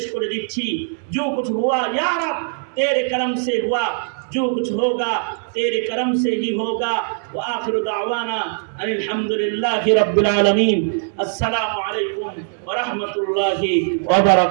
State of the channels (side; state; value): left; silent; 65 dB below the other